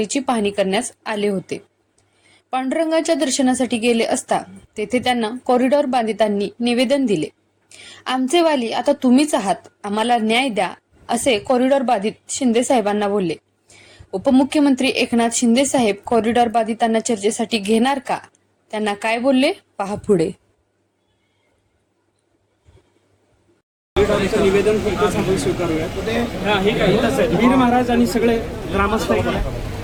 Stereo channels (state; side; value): identical; both; correlation 1.00